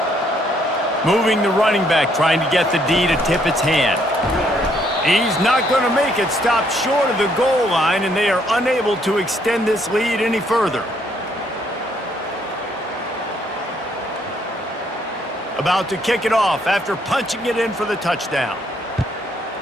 Moving the running back, trying to get the D to tip its hand. He's not going to make it, stopped short of the goal line, and they are unable to extend this lead any further. About to kick it off after punching it in for the touchdown.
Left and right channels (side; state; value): both; normal; correlation 0.69